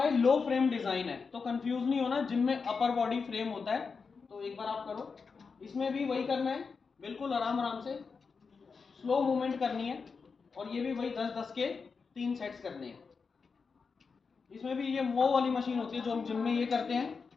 ये लो फ्रेम डिजाइन है। तो कंफ्यूज नहीं होना, जिम में अपर बॉडी फ्रेम होता है। तो एक बार आप करो, इसमें भी वही करना है, बिल्कुल आराम आराम से स्लो मूवमेंट करनी है। और ये भी वही 10-10 के 3 सेट्स करने हैं। इसमें भी ये वो वाली मशीन होती है जो हम जिम में ये करते हैं,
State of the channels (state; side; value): quieter; right; 5.1 dB